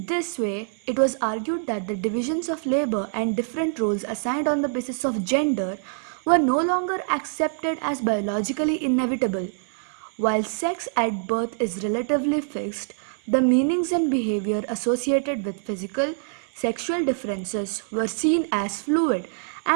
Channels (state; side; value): silent; left; 62 dB below the other